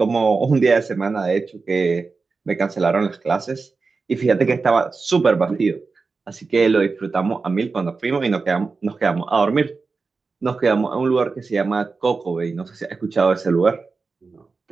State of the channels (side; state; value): left; quieter; 4.3 dB